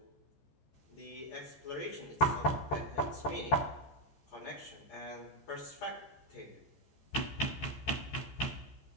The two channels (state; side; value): late; right; 14 ms